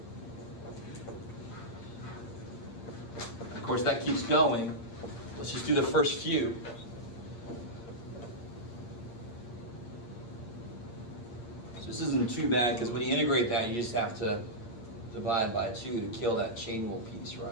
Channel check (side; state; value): right; late; 8.3 ms